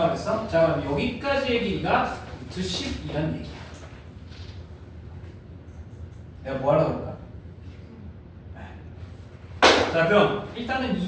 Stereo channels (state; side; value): identical; both; correlation 1.00